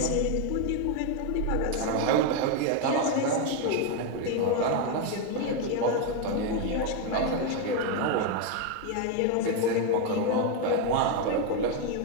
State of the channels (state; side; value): different; both; correlation 0.01